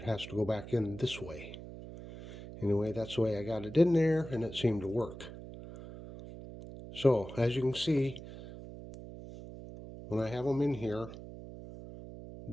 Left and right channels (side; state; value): right; noise; hum, 13 dB below the sound